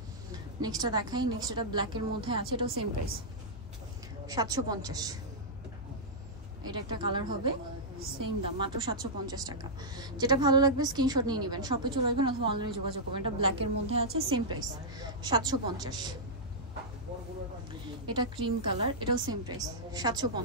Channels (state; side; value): normal; both; correlation -0.10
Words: নেক্সটটা দেখাই। নেক্সট এটা ব্ল্যাকের মধ্যে আছে, এটাও সেম প্রাইস 750। এটা একটা কালার হবে, সেম দাম মাত্র 750 টাকা। যেটা ভালো লাগবে স্ক্রিনশট নিয়ে নেবেন, শপে চলে আসবেন অথবা অনলাইনে যোগাযোগ করবেন। এটা ব্ল্যাকের মধ্যে আছে, সেম প্রাইস 750। এটা ক্রিম কালার, এটাও সেম প্রাইস